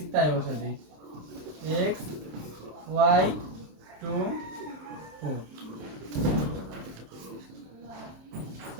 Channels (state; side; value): late; left; 27 ms